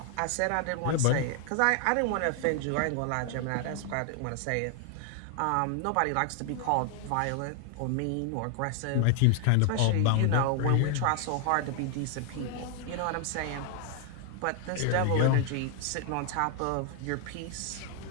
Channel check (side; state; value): both; different; correlation 0.00